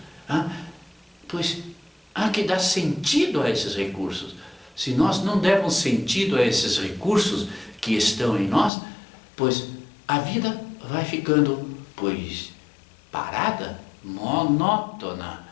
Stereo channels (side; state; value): right; drops out; at 8.7 s